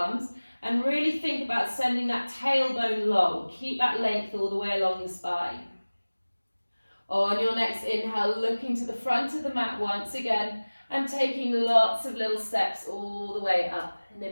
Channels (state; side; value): inverted; both; correlation -1.00